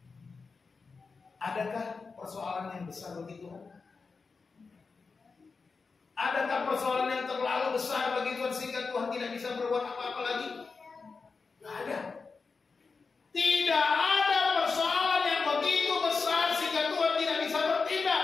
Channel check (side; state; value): right; quieter; 4.6 dB